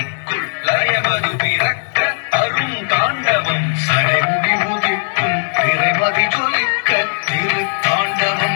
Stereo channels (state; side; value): silent; right; 60 dB below the other